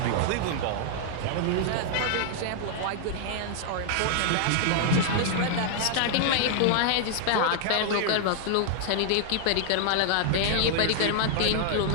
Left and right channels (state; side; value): different; both; correlation -0.01